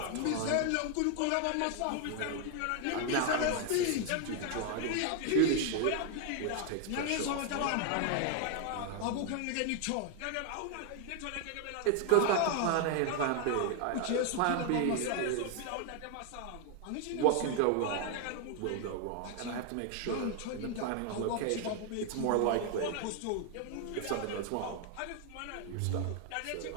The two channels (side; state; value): both; different; correlation 0.00